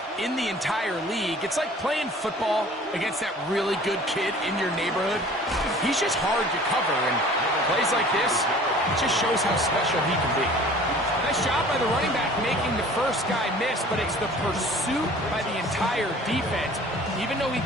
in the entire league. It's like playing football against that really good kid in your neighborhood. He's just hard to cover, and plays like this, it just shows how special he can be. Nice job by the running back making the first guy miss, but it's the pursuit by the entire defense. Even though he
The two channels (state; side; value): normal; both; correlation 0.48